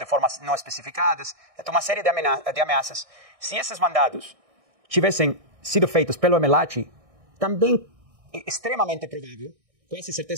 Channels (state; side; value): late; left; 1.6 ms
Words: formas não especificadas. Então, uma série de ameaças. Se esses mandados tivessem sido feitos pelo MLAT, também é extremamente provável, com essa